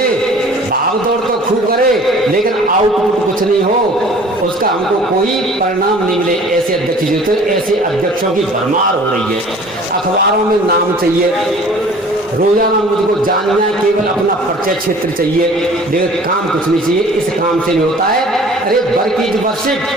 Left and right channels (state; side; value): normal; both; correlation 0.48